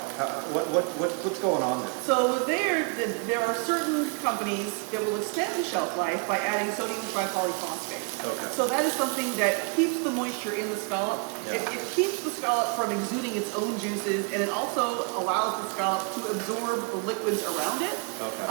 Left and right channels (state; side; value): quieter; left; 36.3 dB